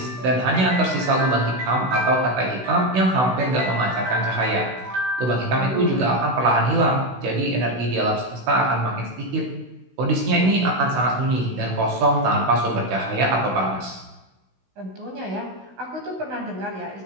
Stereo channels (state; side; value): late; left; 16 ms